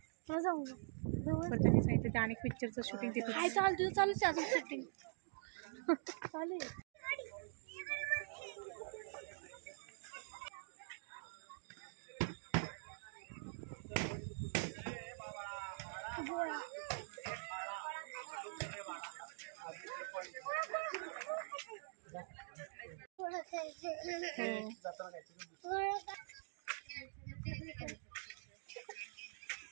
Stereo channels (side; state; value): left; silent; digital silence